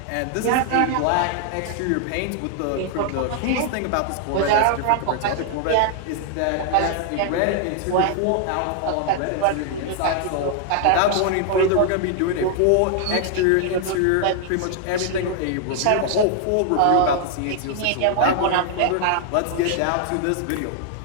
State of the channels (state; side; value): different; both; correlation 0.00